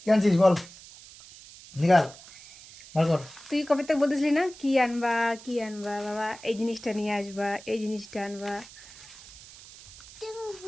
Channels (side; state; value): right; noise; hiss, 19 dB below the sound